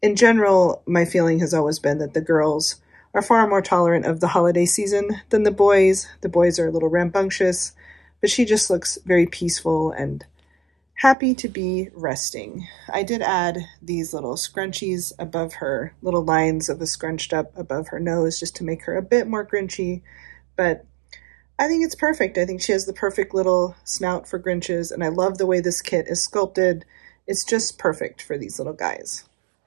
in general, my feeling has always been that the girls are far more tolerant of the holiday season than the boys. The boys are a little rambunctious, but she just looks very peaceful and happy to be resting. I did add these little scrunchies above her, little lines of a scrunched up above her nose just to make her a bit more Grinchy, but I think it's perfect. I think she has the perfect little snout for Grinches, and I love the way this kit is sculpted. It's just perfect for these little guys.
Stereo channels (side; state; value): left; drops out; at 11.2 s